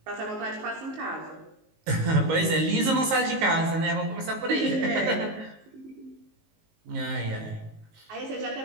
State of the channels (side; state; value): left; late; 19 ms